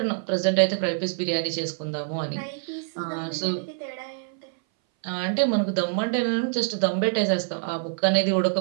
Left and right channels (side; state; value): left; silent; 59 dB below the other